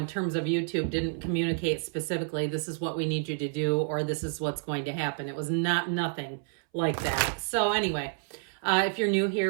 terms of YouTube, didn't communicate specifically, this is what we need you to do, or this is what's going to happen. It was nothing like that. So anyway, if you're new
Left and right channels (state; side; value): silent; left; 58 dB below the other